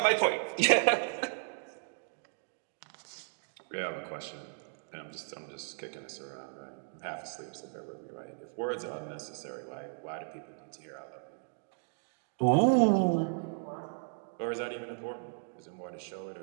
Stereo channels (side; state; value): left; silent; digital silence